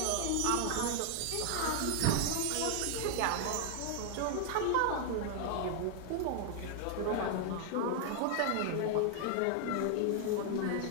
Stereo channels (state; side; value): different; both; correlation 0.00